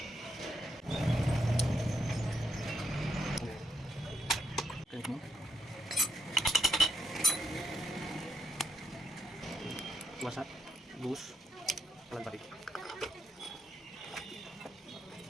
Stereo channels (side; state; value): both; normal; correlation 0.78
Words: Wasat, bus, pelan balik.